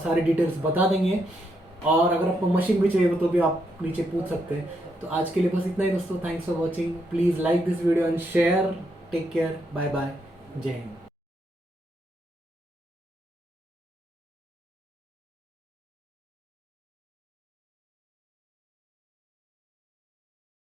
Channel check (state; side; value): normal; both; correlation 0.78